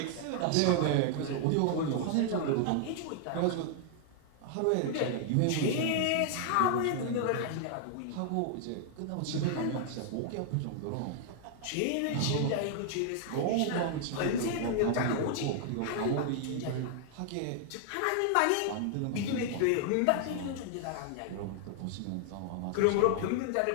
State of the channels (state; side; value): different; both; correlation 0.00